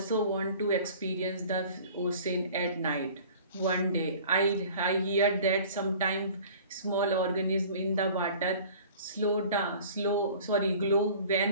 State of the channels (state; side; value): inverted; both; correlation -0.46